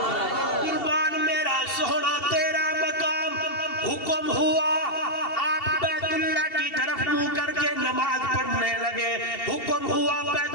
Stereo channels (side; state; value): right; late; 2.7 ms